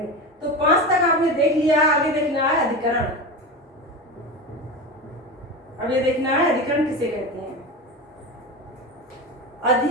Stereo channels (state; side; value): normal; both; correlation 0.24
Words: तो 5 तक आपने देख लिया, आगे देखना है अधिकरण। अब ये देखना है अधिकरण किसे कहते हैं।